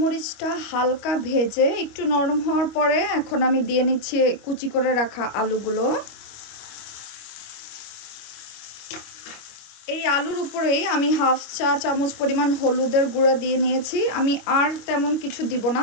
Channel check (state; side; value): late; right; 25 ms